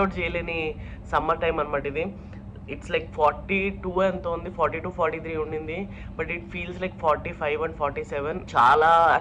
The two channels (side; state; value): both; identical; correlation 1.00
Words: చేయలేని సమ్మర్ టైం అనమాట ఇది. ఇట్స్ లైక్ 42 ఎంత ఉంది, 42, 43 ఉండింది. But it feels like 45 and 47. చాలా